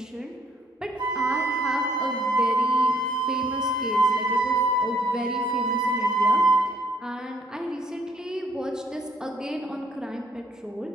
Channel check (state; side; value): normal; both; correlation 0.65